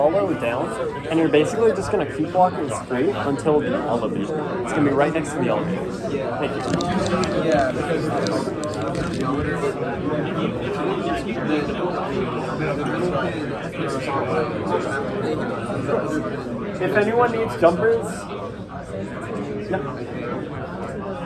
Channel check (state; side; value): identical; both; correlation 1.00